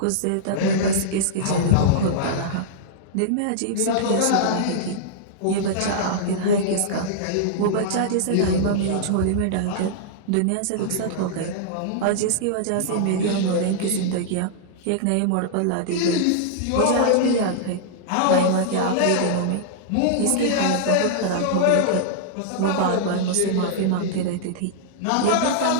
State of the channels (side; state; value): both; different; correlation -0.02